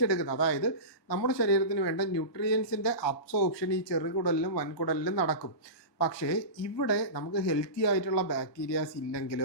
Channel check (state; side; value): late; right; 1.3 ms